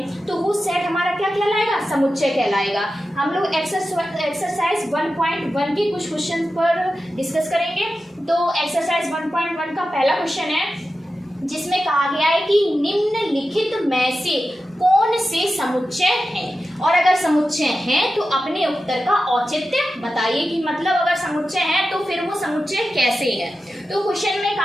तो वो सेट हमारा क्या कहलाएगा? समुच्चय कहलाएगा। हम लोग एक्सरसाइज 1.1 के कुछ क्वेश्चन पर डिस्कस करेंगे। तो एक्सरसाइज 1.1 का पहला क्वेश्चन है, जिसमें कहा गया है कि निम्नलिखित में से कौन से समुच्चय हैं, और अगर समुच्चय हैं तो अपने उत्तर का औचित्य बताइए। कि मतलब अगर समुच्चय है तो फिर वो समुच्चय कैसे है। तो क्वेश्चन में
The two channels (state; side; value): normal; both; correlation 0.92